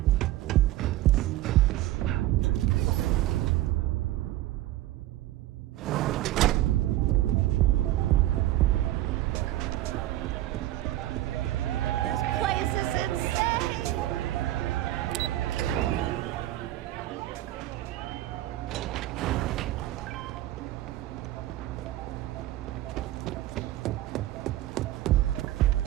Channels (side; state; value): left; quieter; 15.0 dB